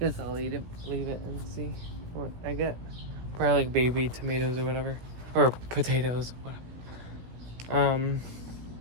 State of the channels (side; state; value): left; late; 17 ms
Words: I'll leave it and see what I get. Probably like baby tomatoes or whatever. Or potatoes, whatever.